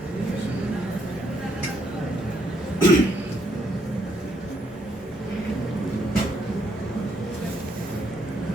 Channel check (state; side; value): normal; both; correlation 0.73